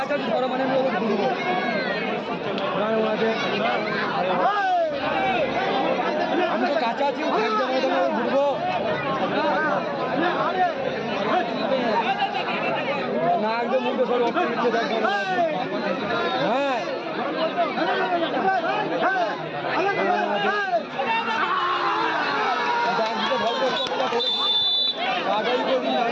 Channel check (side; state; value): both; identical; correlation 1.00